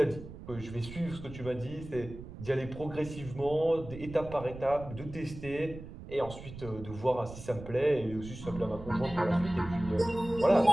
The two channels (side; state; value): right; noise; rumble, 13 dB below the sound